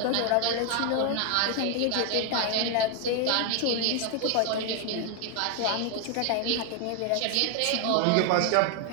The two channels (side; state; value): both; different; correlation 0.00